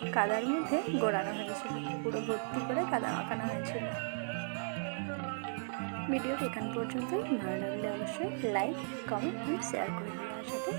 কাদার মধ্যে গোড়ানো হয়েছিল, পুরো ভর্তি করে কাদা মাখানো হয়েছিল। ভিডিওর এখান পর্যন্তই। ভালো লাগলে অবশ্যই লাইক, কমেন্ট অ্যান্ড শেয়ার করে দিও, আর সাথে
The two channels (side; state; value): left; silent; 54 dB below the other